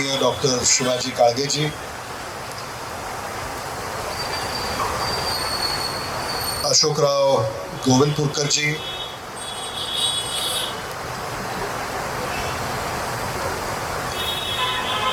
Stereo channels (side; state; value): both; identical; correlation 1.00